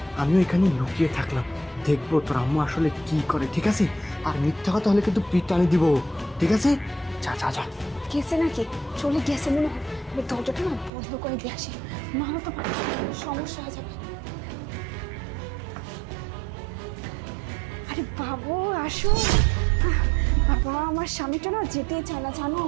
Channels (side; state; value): left; drops out; at 10.9 s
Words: আমিও এখানে লুকিয়ে থাকলাম, দেখবো তোর আম্মু আসলে কি করে। ঠিক আছে, আর মিথ্যা কথা হলে কিন্তু পিঠ টানি দিব। ঠিক আছে, যা যা যা। গেছে নাকি? চলে গেছে মনে হয়। আমি দরজাটা না বন্ধ করে দিয়ে আসি, নাহলে তো সমস্যা হয়ে যাবে। আরে বাবু আসো। বাবা, আমার স্বামীটা না যেতেই চায় না জানো,